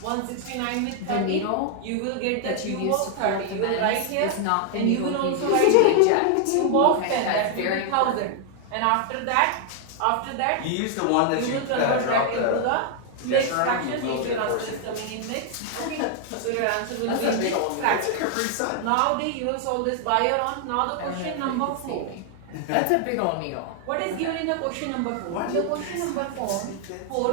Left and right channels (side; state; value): both; different; correlation 0.00